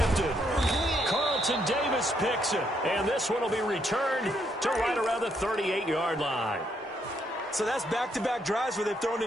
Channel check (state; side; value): normal; both; correlation 0.74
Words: Carlton Davis picks it. And this one will be returned to right around the 38-yard line. So that's back-to-back drives where they've thrown